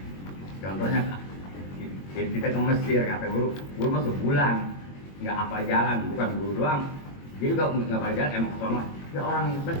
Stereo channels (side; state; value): right; late; 21 ms